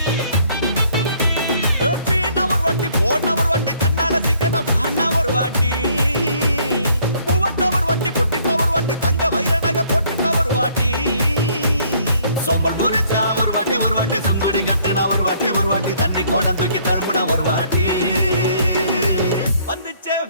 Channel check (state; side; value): inverted; both; correlation -0.63